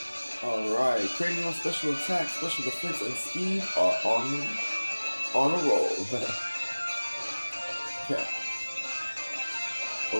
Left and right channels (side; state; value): both; inverted; correlation -1.00